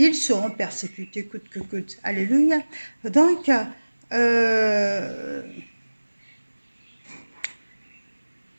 seront persécutés coûte que coûte. Alléluia. Donc, en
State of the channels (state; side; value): inverted; both; correlation -1.00